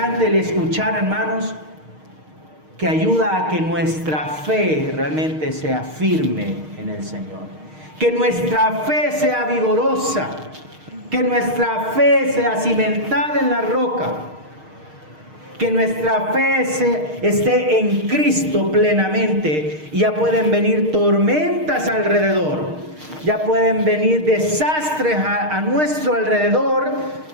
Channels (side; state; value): left; late; 6.5 ms